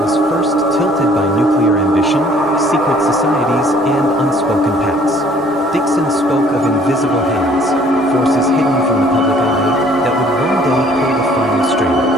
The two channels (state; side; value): normal; both; correlation 0.57